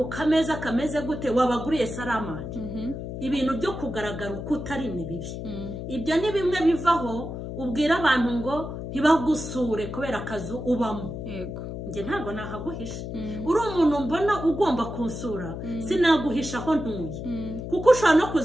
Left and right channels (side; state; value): left; noise; hum, 7 dB below the sound